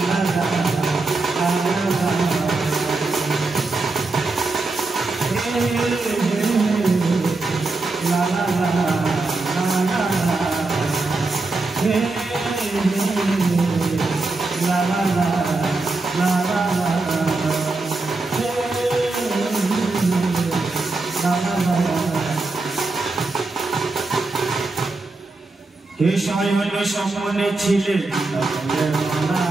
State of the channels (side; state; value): left; quieter; 3.4 dB